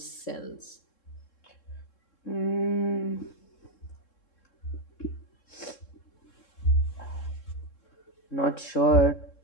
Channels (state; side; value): late; right; 3.7 ms